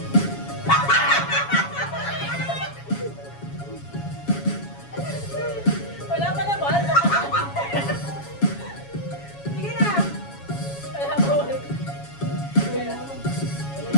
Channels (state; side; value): late; right; 7.2 ms